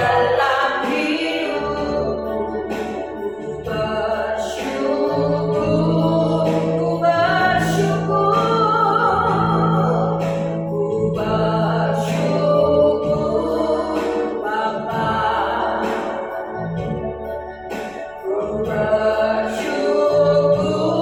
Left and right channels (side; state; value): left; noise; rumble, 29 dB below the sound